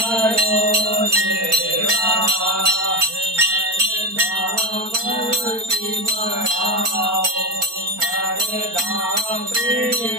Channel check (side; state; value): left; late; 4.4 ms